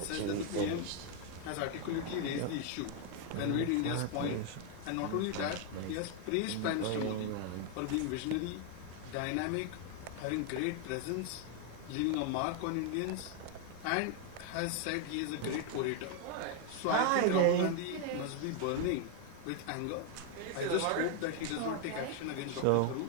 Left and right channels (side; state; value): both; different; correlation 0.00